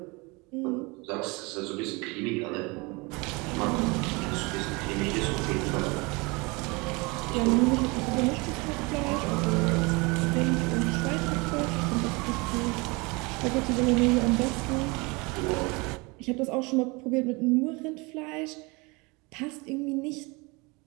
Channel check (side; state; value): left; quieter; 26.9 dB